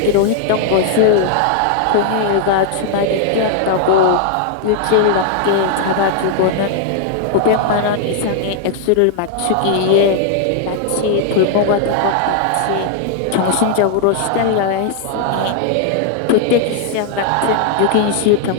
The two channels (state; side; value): different; both; correlation 0.00